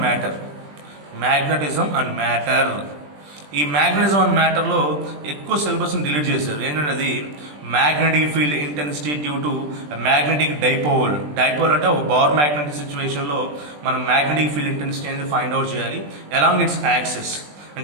matter. ఈ మ్యాగ్నెటిజం అండ్ మ్యాటర్లో ఎక్కువ సిలబస్ని డిలీట్ చేశారు. ఏంటంటే అది magnetic field intensity due to magnetic dipole అంటే ఒక బార్ మ్యాగ్నెటిక్ సిచ్యువేషన్లో మనం మ్యాగ్నెటిక్ ఫీల్డ్ ఇంటెన్సిటీ అనేది ఫైండ్ అవుట్ చేయాలి అలాంగ్ ఇట్స్ యాక్సిస్.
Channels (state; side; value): late; left; 20 ms